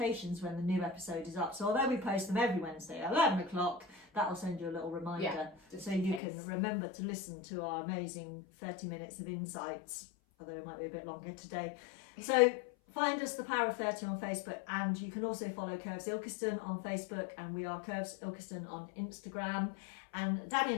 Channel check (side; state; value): right; drops out; at 6.2 s